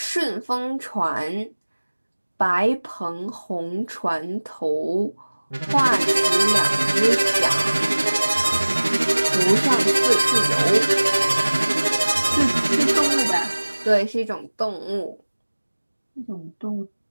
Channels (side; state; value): both; inverted; correlation -1.00